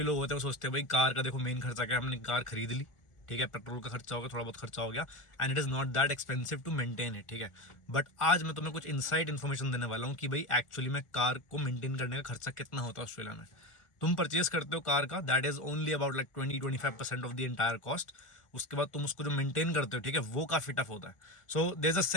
लोग होते हैं वो सोचते हैं भाई कार का देखो मेन खर्चा क्या है, हमने कार खरीद ली, ठीक है, पेट्रोल का खर्चा हो गया, थोड़ा बहुत खर्चा हो गया, and it is not that expensive to maintain it. ठीक है, बट आज मैं तुम्हें कुछ इनसाइड इन्फॉर्मेशन देने वाला हूँ कि भाई एक्चुअली में कार को मेंटेन करने का खर्चा कितना होता है ऑस्ट्रेलिया में। तुम परचेज करते हो कार का, that is only about like 20-25% of the entire cost. उसके बाद तुम उसको जो मेंटेन करते हो, ठीक है, वो काफ़ी टफ होता है। So there is a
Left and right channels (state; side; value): late; right; 1.4 ms